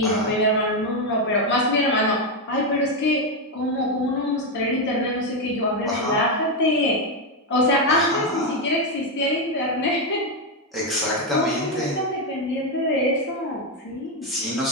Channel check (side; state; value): both; normal; correlation 0.06